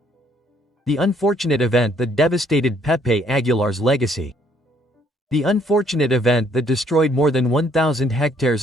The unfortunate event that devastated Pepe Aguilar's legacy. The unfortunate event that destroyed more than 1,000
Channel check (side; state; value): both; normal; correlation 0.65